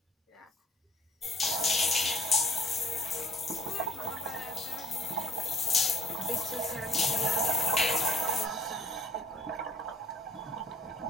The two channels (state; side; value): normal; both; correlation 0.56